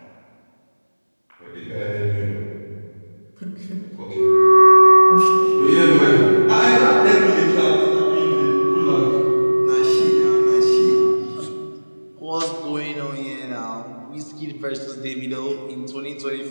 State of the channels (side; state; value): both; inverted; correlation -1.00